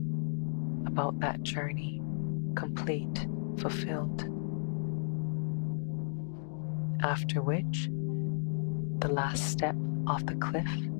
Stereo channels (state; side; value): silent; right; digital silence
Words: about that journey, complete, fulfilled. After which, the last step off the cliff